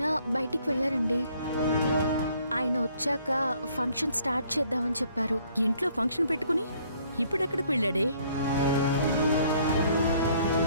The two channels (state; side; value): inverted; both; correlation -0.63